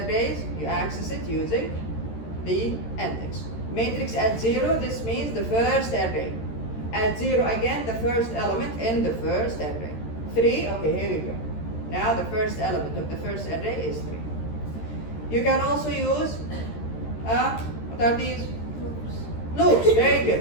You access it using the index. Matrix at 0, this means the first array. At 0 again, the first element in the first array. 3, okay, here we go. Now the first element of the first array is 3. You can also use, what are these? Loops, very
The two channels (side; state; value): right; late; 13 ms